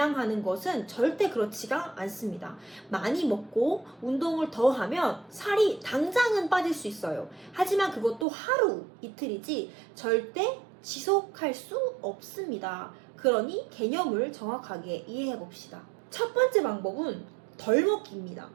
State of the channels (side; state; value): left; drops out; at 8.2 s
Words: 것은 절대 그렇지가 않습니다. 많이 먹고 운동을 더 하면 살이 당장은 빠질 수 있어요. 하지만 그것도 하루, 이틀이지 절대 지속할 수 없습니다. 그러니 개념을 정확하게 이해해 봅시다. 첫 번째 방법은 덜 먹기입니다.